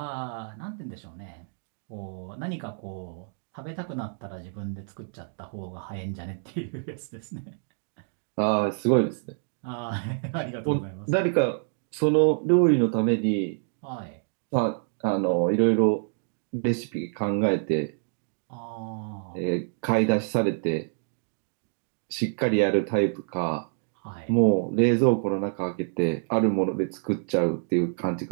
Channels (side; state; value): left; silent; digital silence